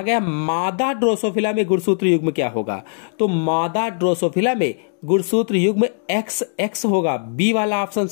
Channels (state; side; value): silent; right; digital silence